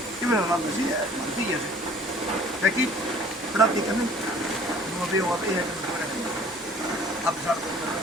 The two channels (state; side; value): noise; left; hum, 30 dB below the sound